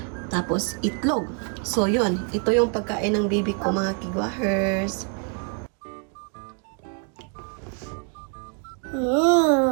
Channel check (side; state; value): left; quieter; 36.6 dB